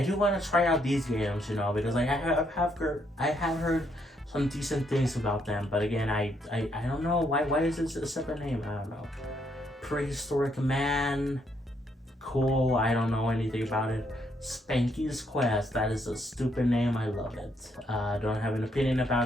do want to try out these games, you know, because like I have heard some decent things about them, but again, I don't know why is this a separate name? I don't know. Prehistoric Man, cool. I don't know anything about it. Spanky's Quest, that is a stupid name. I love it. Don't have an opinion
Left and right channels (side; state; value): both; normal; correlation 0.74